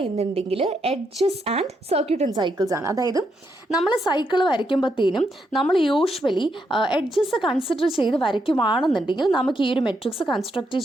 എന്നുണ്ടെങ്കിൽ edges and circuit and cycles ആണ്. അതായത് നമ്മൾ സൈക്കിൾ വരയ്ക്കുമ്പോഴത്തേനും നമ്മൾ യൂഷ്വലി എഡ്ജസ് കൺസിഡർ ചെയ്ത് വരയ്ക്കുവാണെന്നുണ്ടെങ്കിൽ നമുക്ക് ഈ ഒരു മെട്രിക്സ് കൺസ്ട്രക്റ്റ്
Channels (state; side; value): normal; both; correlation 0.79